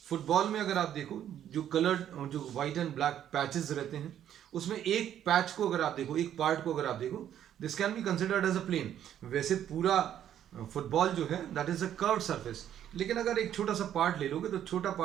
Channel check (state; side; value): quieter; left; 10.5 dB